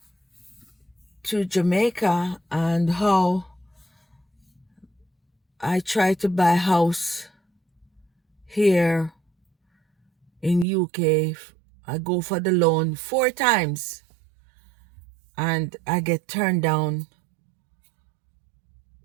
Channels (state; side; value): drops out; left; at 10.7 s